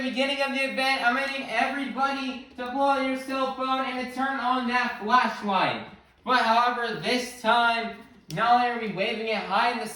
beginning of the event, I'm going to need everybody to pull out your cell phone and to turn on that flashlight. But however, this time, not only are we waving it high in the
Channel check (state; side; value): identical; both; correlation 1.00